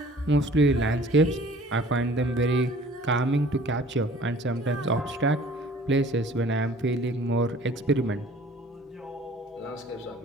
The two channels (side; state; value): both; normal; correlation 0.50